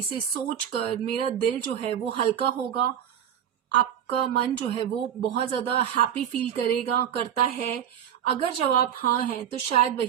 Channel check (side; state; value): left; quieter; 9.6 dB